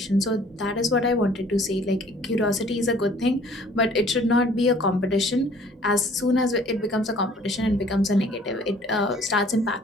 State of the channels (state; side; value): normal; both; correlation 0.55